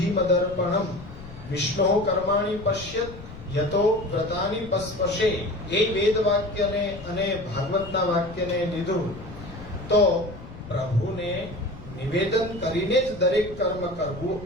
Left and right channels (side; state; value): left; noise; rumble, 15 dB below the sound